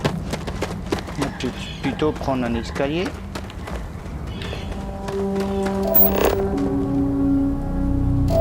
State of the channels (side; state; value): both; identical; correlation 1.00